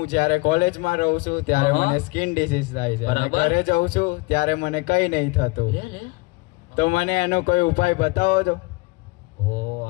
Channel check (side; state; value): right; quieter; 25.7 dB